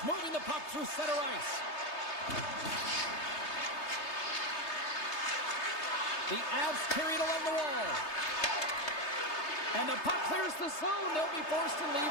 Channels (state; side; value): late; right; 3.3 ms